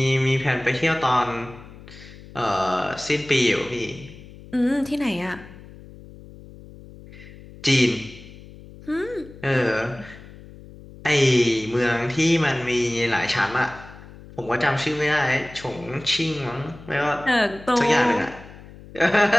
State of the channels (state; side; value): noise; left; hum, 18 dB below the sound